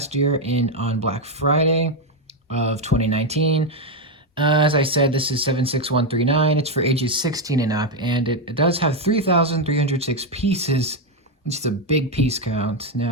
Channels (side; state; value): both; normal; correlation 0.05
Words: year on Black Friday of 2019. As I said, this is 76139. It's for ages 16 and up, and it does have 3,306 pieces, which is a big piece count.